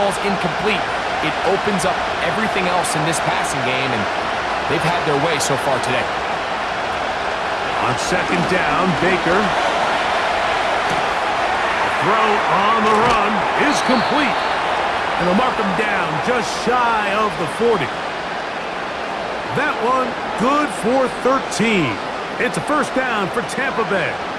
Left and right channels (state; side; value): identical; both; correlation 1.00